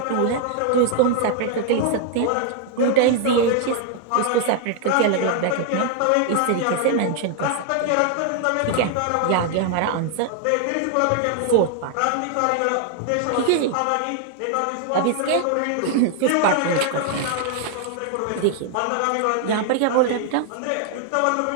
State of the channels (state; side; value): different; both; correlation 0.00